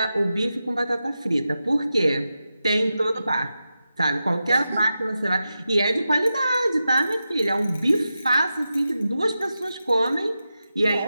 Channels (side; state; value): both; inverted; correlation -0.91